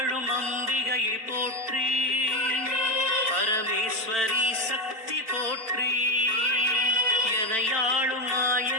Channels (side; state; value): left; late; 4.5 ms